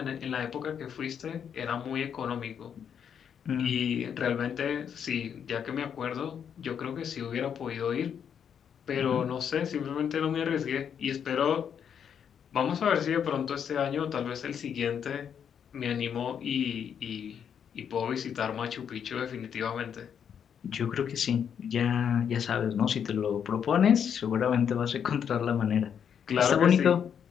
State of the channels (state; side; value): quieter; right; 8.0 dB